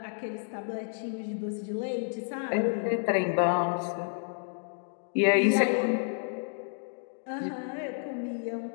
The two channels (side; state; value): right; silent; digital silence